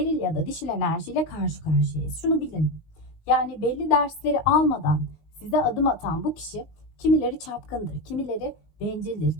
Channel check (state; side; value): late; right; 19 ms